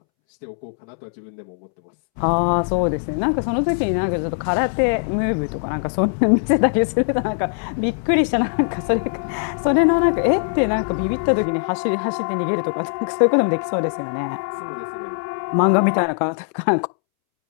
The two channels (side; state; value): right; silent; 65 dB below the other